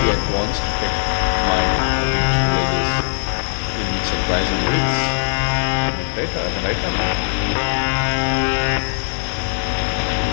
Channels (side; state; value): right; silent; 63 dB below the other